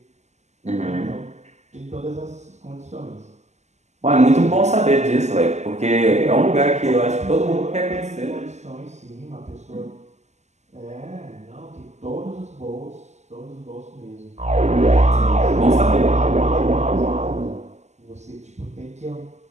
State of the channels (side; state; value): left; late; 0.33 ms